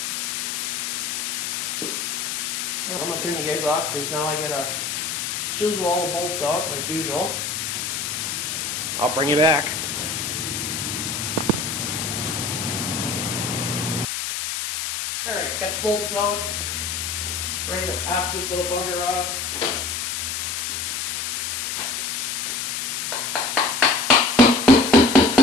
I'm going to turn you guys off because now I gotta chisel all the bolts out like usual. I'll bring you back. Alright, got the bolts out. Ready to pop this little bugger off.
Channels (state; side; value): noise; left; hiss, 2 dB below the sound